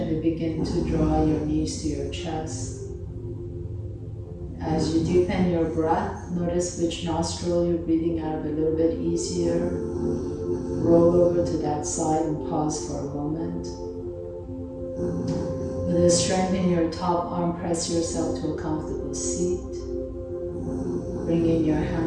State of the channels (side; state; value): both; identical; correlation 1.00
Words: begin to draw your knees to your chest. As you deepen your breath, notice which nostril you're breathing out of a little bit easier. Roll over to that side and pause for a moment. With a strength in your top arm, press yourself to a comfortable seat. Bringing your